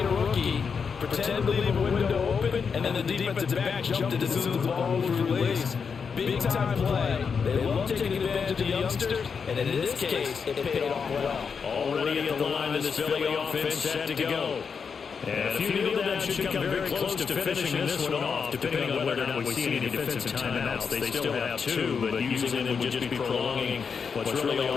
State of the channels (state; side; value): quieter; right; 6.0 dB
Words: rookie, pretend to leave a window open, and then the defensive back jumped it as soon as the ball was released. Big-time play. They love taking advantage of the youngsters, and in this case, it paid off well. Already at the line of this Philly offense set to go. And a few kneel downs should come very close to finishing this one off, depending on whether or not we see any defensive timeouts. They still have 2, but using them would just be prolonging what's really